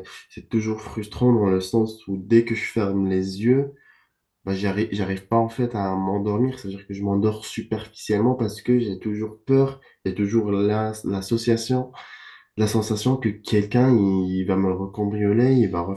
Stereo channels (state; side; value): identical; both; correlation 1.00